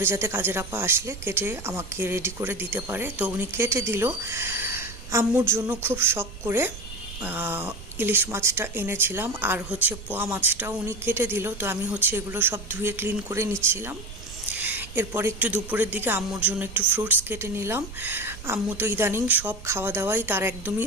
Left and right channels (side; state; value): right; noise; rumble, 13 dB below the sound